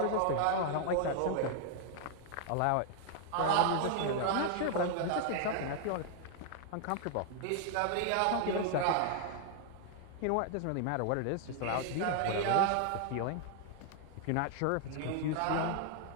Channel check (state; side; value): different; both; correlation 0.00